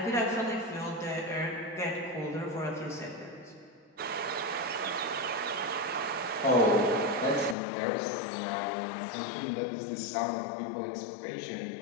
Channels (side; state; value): right; drops out; at 7.6 s